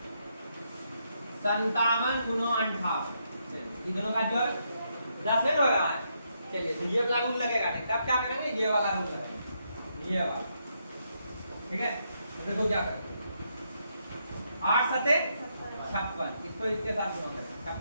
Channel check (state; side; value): inverted; both; correlation -0.78